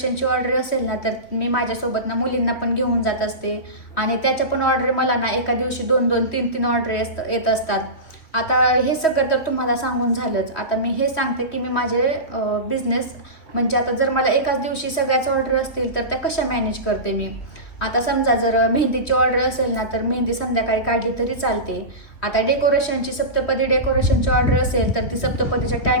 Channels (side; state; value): right; late; 3.0 ms